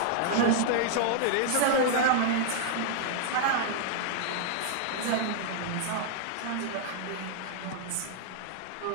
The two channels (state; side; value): different; both; correlation -0.01